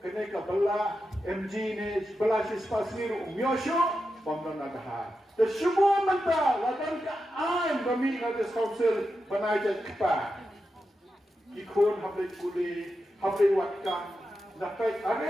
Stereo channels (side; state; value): both; normal; correlation 0.89